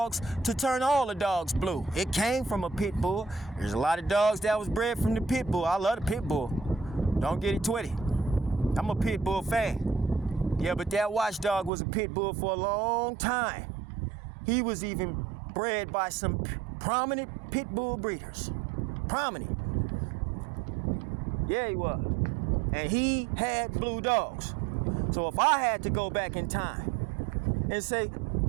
to turn all the dogs blue. It came from a pit bull. There's a lot of dogs that was bred from the pit bull. I love the pit bull. Don't get it twisted. I'm a pit bull fan. Yeah, but that watchdog was a pit bull for a long time. He was even bred by some prominent pit bull breeders. Prominent. Yeah, he was. And he had blue dogs. So if I had to go back in time and say,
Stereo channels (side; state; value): left; drops out; at 11.7 s